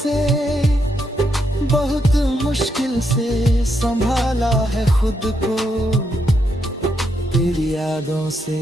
बहुत मुश्किल से संभाला है खुद को, तेरी यादों से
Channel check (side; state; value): both; normal; correlation 0.79